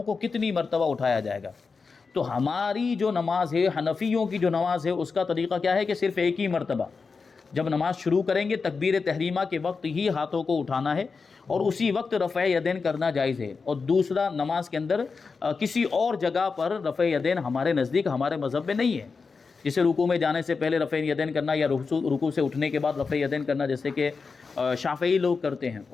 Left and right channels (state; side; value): quieter; right; 4.8 dB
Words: کو کتنی مرتبہ اٹھایا جائے گا۔ تو ہماری جو نماز ہے، حنفیوں کی جو نماز ہے، اس کا طریقہ کیا ہے کہ صرف ایک ہی مرتبہ جب نماز شروع کریں گے تکبیر تحریمہ کے وقت ہی ہاتھوں کو اٹھانا ہے، اور اسی وقت رفع یدین کرنا جائز ہے۔ اور دوسرا نماز کے اندر کسی اور جگہ پر رفع یدین ہمارے نزدیک، ہمارے مذہب میں نہیں ہے، جسے رکوع میں جانے سے پہلے رفع یدین کرنا یا رکوع سے اٹھنے کے بعد رفع یدین کرنا، جیسے کہ شافعی لوگ کرتے ہیں